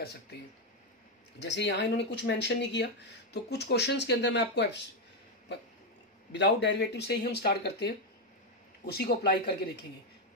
सकते हैं। जैसे यहाँ इन्होंने कुछ मेंशन नहीं किया, तो कुछ क्वेश्चंस के अंदर मैं आपको विदाउट डेरिवेटिव से ही हम स्टार्ट करते हैं, उसी को अप्लाई करके देखेंगे।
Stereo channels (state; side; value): normal; both; correlation 0.05